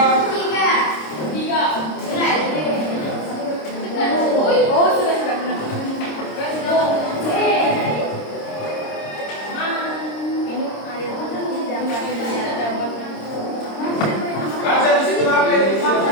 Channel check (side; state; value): right; late; 26 ms